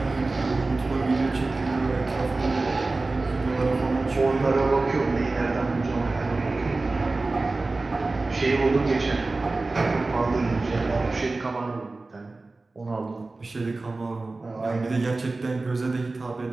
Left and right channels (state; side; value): quieter; left; 3.4 dB